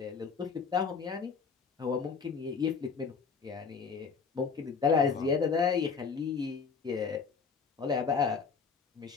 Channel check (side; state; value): right; quieter; 5.6 dB